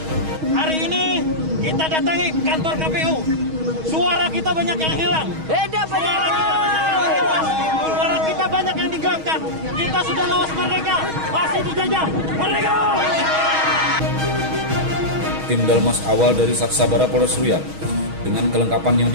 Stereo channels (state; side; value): late; left; 6.3 ms